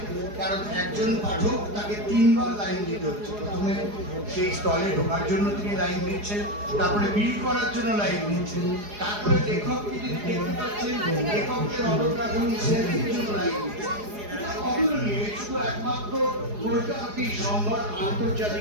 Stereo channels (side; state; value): left; late; 4.8 ms